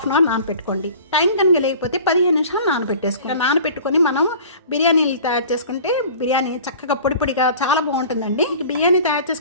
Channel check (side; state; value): both; inverted; correlation -0.43